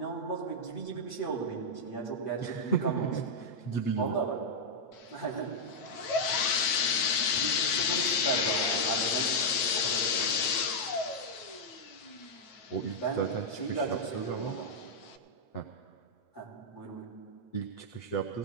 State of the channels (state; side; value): late; right; 9.1 ms